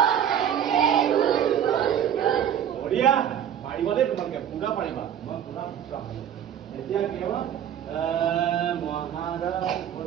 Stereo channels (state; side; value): quieter; left; 9.5 dB